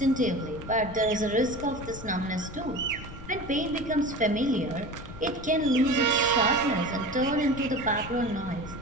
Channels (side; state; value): left; noise; rumble, 13 dB below the sound